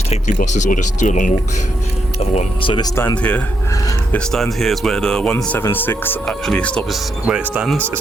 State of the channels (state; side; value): normal; both; correlation 0.80